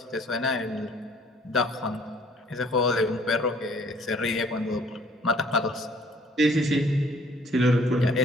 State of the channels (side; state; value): both; normal; correlation 0.58